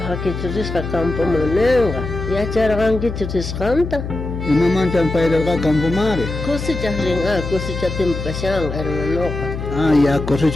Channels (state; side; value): noise; left; hum, 6 dB below the sound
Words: hakichuris ka kampo monenga. Ya charang kichuris kanta. Imaman siya pairal ka kampo mare. Kusi chahringa, kusi chatim kasyang, hermano ka. Ya koso